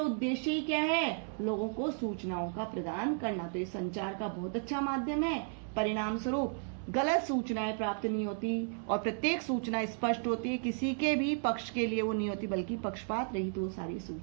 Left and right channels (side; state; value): left; silent; 55 dB below the other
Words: ही क्या है? लोगों को सूचनाओं का प्रदान करना। तो ये संचार का बहुत अच्छा माध्यम है। परिणाम स्वरूप गलत सूचनाएं प्राप्त नहीं होती और प्रत्येक सूचना स्पष्ट होती है, किसी के भी पक्ष के लिए वो नहीं होती, बल्कि पक्षपात रहित वो सारी